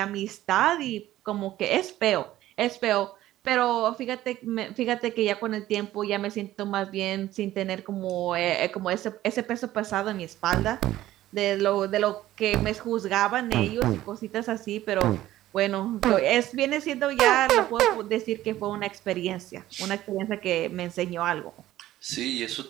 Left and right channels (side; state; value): left; quieter; 14.5 dB